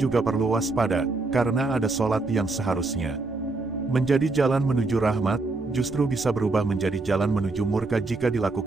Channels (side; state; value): left; quieter; 3.4 dB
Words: perlu waspada, karena ada solat yang seharusnya menjadi jalan menuju rahmat, justru bisa berubah menjadi jalan menuju murka jika